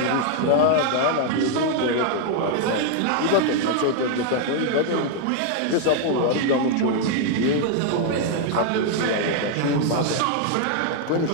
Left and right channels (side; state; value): both; different; correlation 0.00